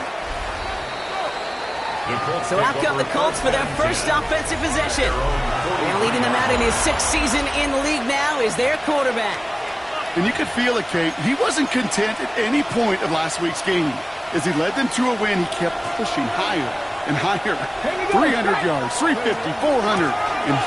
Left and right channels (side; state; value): both; identical; correlation 1.00